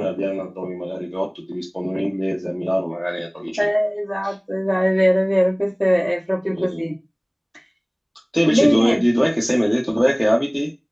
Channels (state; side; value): identical; both; correlation 1.00